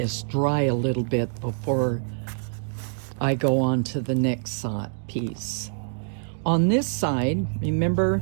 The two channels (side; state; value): left; silent; digital silence